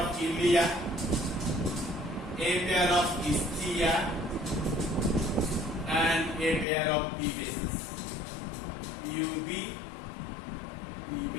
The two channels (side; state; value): right; drops out; at 6.7 s